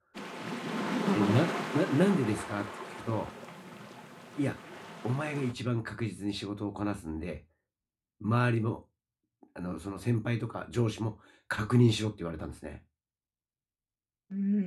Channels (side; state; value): both; identical; correlation 1.00